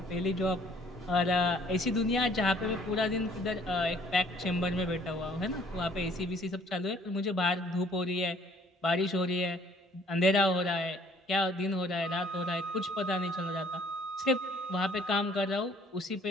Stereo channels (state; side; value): normal; both; correlation 0.59